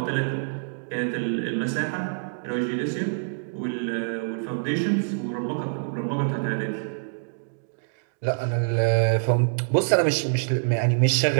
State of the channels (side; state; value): left; silent; digital silence